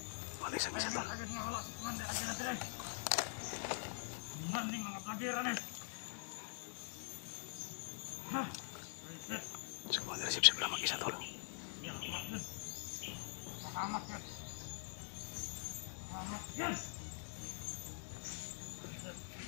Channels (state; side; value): silent; right; digital silence